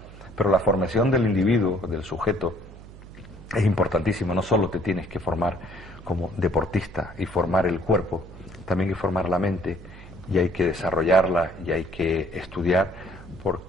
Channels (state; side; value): noise; right; hum, 17 dB below the sound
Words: pero la formación del individuo, del sujeto, es importantísimo. No solo te tienes que formar como deportista y formar el cuerpo, también hay que formar la mente, y hay que desarrollarla y hay que estudiar,